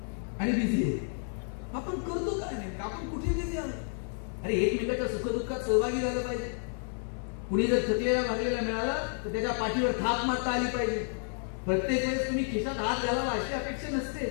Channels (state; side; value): silent; right; 57 dB below the other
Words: आणि बिझी आहे. आपण करतो काय नाही? आपण कुठे बिझी आहोत? अरे एकमेकाच्या सुखदुःखात सहभागी झालं पाहिजे. कुणी जर थकलेला भागलेला मिळाला तर त्याच्या पाठीवर थाप मारता आली पाहिजे. प्रत्येक वेळेस तुम्ही खिशात हात घालावा अशी अपेक्षा नसते.